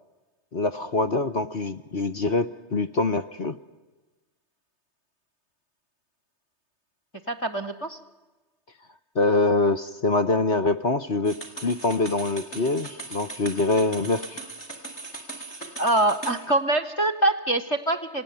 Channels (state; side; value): late; right; 3.3 ms